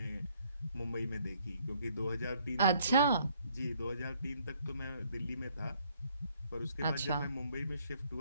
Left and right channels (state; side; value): inverted; both; correlation -0.66